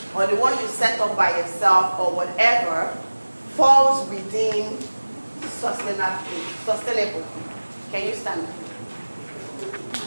or the one you set up by yourself or whatever, falls within sustainable. Can you stand up?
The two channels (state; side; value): inverted; both; correlation -1.00